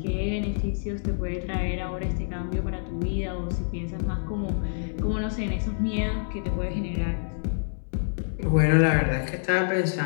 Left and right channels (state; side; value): silent; right; digital silence